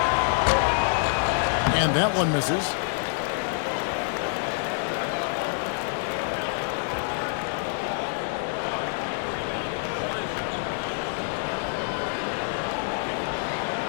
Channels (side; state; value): right; silent; 58 dB below the other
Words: And that one misses.